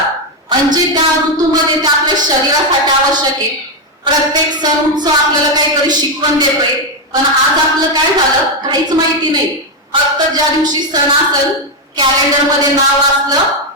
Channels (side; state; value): both; normal; correlation 0.05